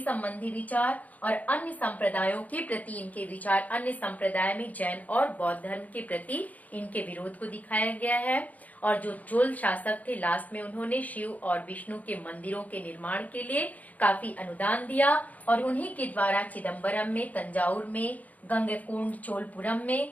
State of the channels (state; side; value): late; right; 0.076 ms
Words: विचार और अन्य संप्रदायों के प्रति इनके विचार, अन्य संप्रदाय में जैन और बौद्ध धर्म के प्रति इनके विरोध को दिखाया गया है। और जो चोल शासक थे, लास्ट में उन्होंने शिव और विष्णु के मंदिरों के निर्माण के लिए काफी अनुदान दिया और उन्हीं के द्वारा चिदम्बरम में, तंजावुर में, गंगैकोंड चोलपुरम में